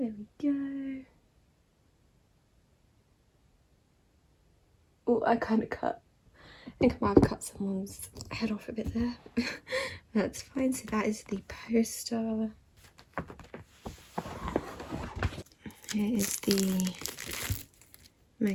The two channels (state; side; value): identical; both; correlation 1.00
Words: we go. Oh, I kind of cut. I think I might have cut someone's head off a bit there. That's fine. So that is the poster. Here is the